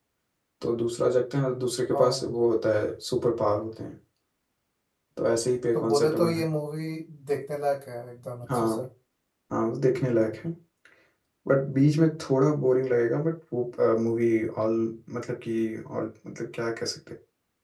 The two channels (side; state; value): both; identical; correlation 1.00